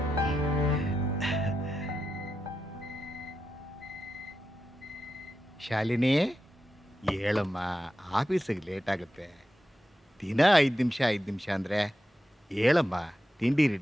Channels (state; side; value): normal; both; correlation 0.89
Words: ಶಾಲಿನಿ, ಹೇಳಮ್ಮ, ಆಫೀಸಿಗೆ ಲೇಟ್ ಆಗುತ್ತೆ. ದಿನ 5 ನಿಮಿಷ ಅಂದರೆ ಹೇಳಮ್ಮ, ತಿಂಡಿ